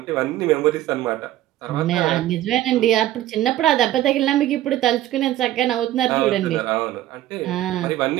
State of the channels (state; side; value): quieter; left; 13.9 dB